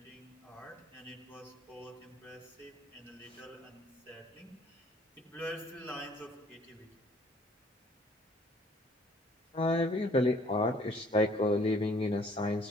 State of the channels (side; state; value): both; normal; correlation 0.59